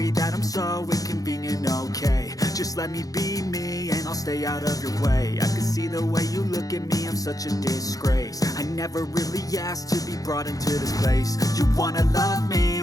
that I'm so inconvenient, okay. Just let me be me and I'll stay out of your way. I can see the way you look at me, I'm such a disgrace. I never really asked to be brought into this place. You wanna love me?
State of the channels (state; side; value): late; right; 0.17 ms